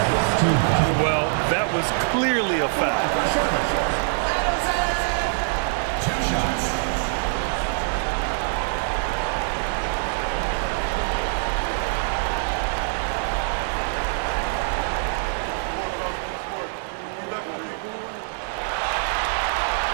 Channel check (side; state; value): left; silent; digital silence